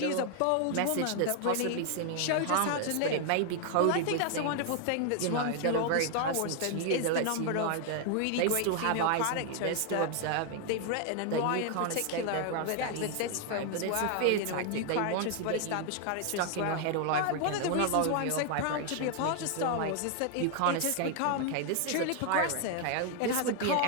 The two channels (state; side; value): different; both; correlation 0.00